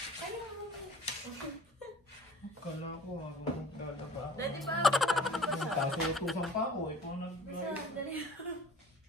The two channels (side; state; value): both; normal; correlation 0.45